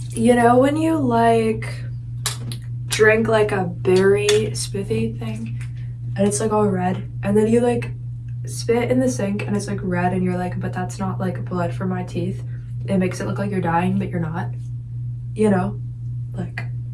You know when you like drink like a berry smoothie thing and it's like all red, and then you like spit in the sink and it's like red and you're like, but that's not like blood from my teeth. It makes it look like you're dying, but you're not. You know, like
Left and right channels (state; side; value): identical; both; correlation 1.00